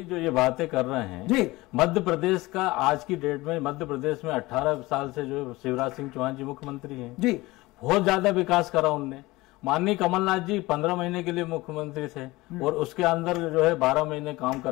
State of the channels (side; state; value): right; quieter; 20.6 dB